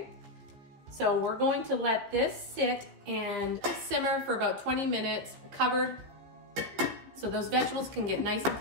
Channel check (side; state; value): left; late; 15 ms